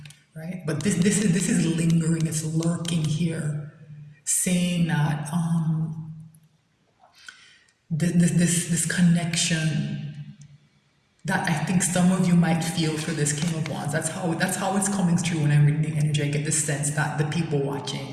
right? But this is lingering, it's lurking here, saying that this connection that I think some of you might feel for this King of Wands. That's how it's coming through when I'm reading the energy. I get the sense that the people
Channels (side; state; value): both; identical; correlation 1.00